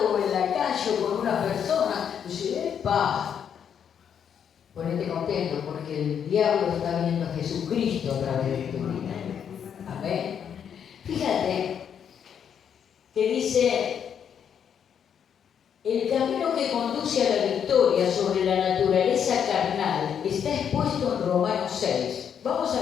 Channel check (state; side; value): quieter; right; 8.1 dB